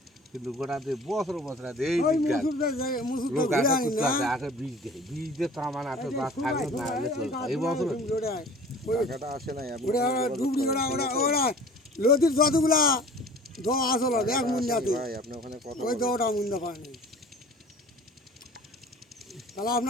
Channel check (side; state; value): both; normal; correlation 0.45